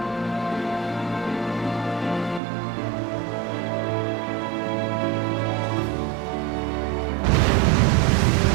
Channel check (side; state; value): left; drops out; at 2.4 s